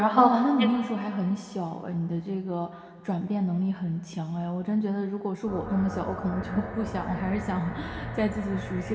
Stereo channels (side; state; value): both; identical; correlation 1.00